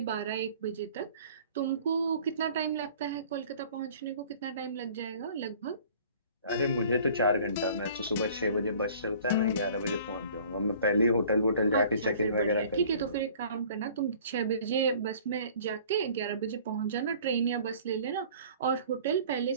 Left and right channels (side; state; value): both; inverted; correlation -0.50